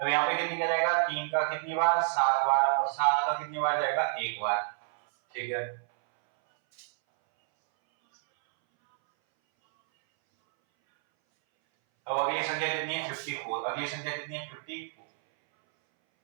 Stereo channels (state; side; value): silent; left; 59 dB below the other